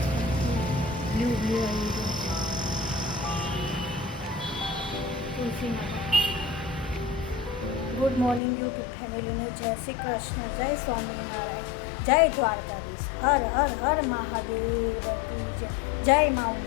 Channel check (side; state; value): right; drops out; at 8.4 s